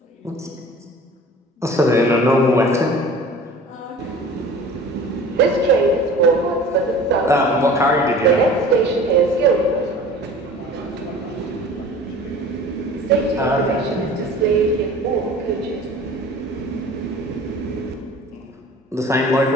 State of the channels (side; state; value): both; normal; correlation 0.43